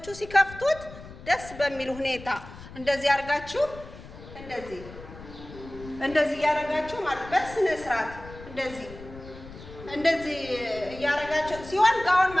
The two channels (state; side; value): noise; left; rumble, 16 dB below the sound